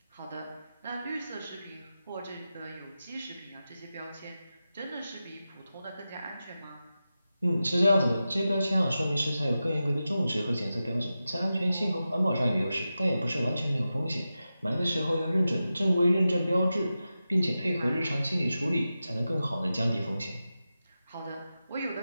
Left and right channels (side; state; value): both; inverted; correlation -0.92